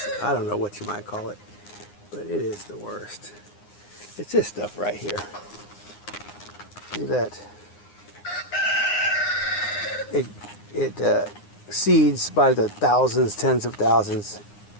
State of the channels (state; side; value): late; right; 9.7 ms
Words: I don't know what you might call it. But it is the worst. It's this stuff right here. See that? It seeds by the thousands, tens of thousands,